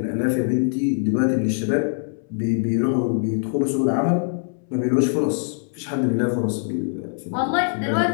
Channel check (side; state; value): right; silent; 64 dB below the other